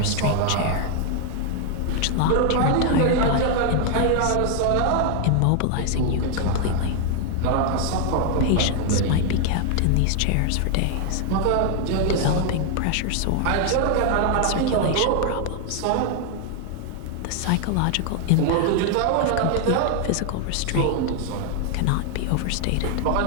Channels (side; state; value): both; different; correlation 0.00